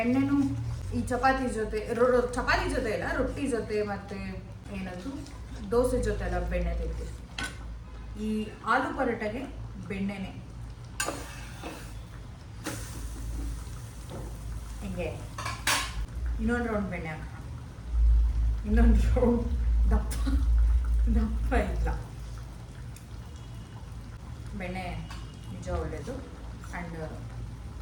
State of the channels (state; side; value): identical; both; correlation 1.00